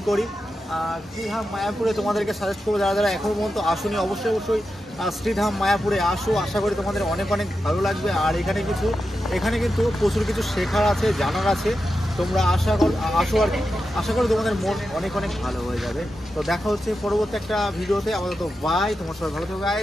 করি। শ্রীধাম মায়াপুরে তোমাদেরকে সাজেস্ট করবো, যারা যারা এখনও পর্যন্ত আসুনি অবশ্যই অবশ্যই শ্রীধাম মায়াপুরে আসো, আশা করি তোমাদের অনেক অনেক ভালো লাগবে। আর এখানে কিন্তু প্রচুর কিছু শেখার আছে, জানার আছে, তোমরা আসো আর কি, আশা করি তোমাদের মন অনেক অনেক ভালো হয়ে যাবে। তো দেখা হচ্ছে পরবর্তী একটা ভিডিওতে, আপাতত বাই, তোমার সবাই ভালো থাকবে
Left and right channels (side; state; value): both; normal; correlation 0.89